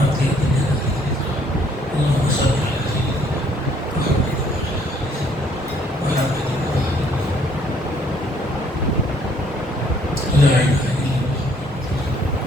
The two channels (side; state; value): both; normal; correlation 0.64